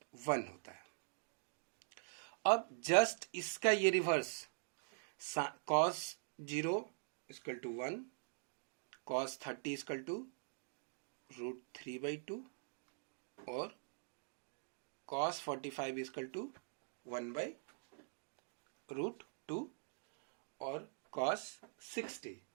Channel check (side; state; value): left; silent; digital silence